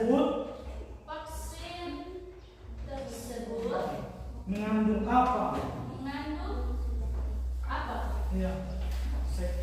Vaksin tersebut mengandung apa? mengandung apa? Ya.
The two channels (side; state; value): both; identical; correlation 1.00